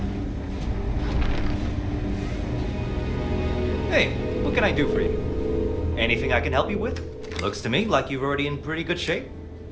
Hey, what can I do for you? Anything I can help you with? Looks to me like you're already in pretty good shape.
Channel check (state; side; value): identical; both; correlation 1.00